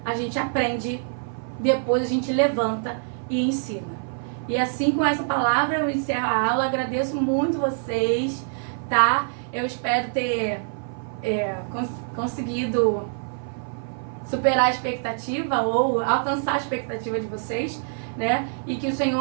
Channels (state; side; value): silent; left; 56 dB below the other